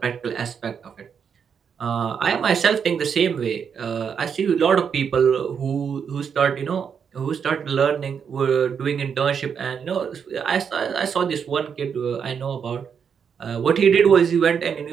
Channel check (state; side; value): quieter; left; 7.0 dB